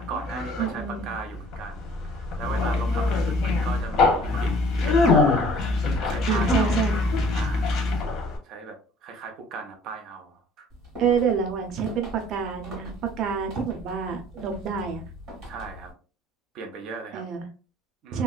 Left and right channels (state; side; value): normal; both; correlation 0.53